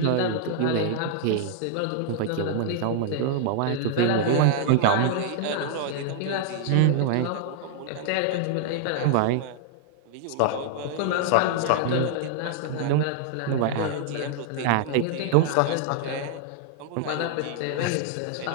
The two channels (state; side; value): different; both; correlation -0.01